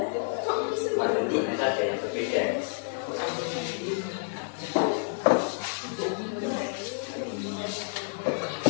Cuma tentunya saja.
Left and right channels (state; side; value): silent; right; digital silence